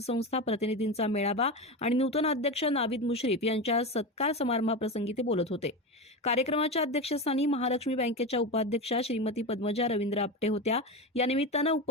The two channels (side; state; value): both; normal; correlation 0.20